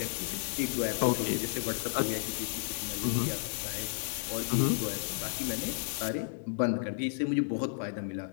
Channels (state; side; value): silent; right; digital silence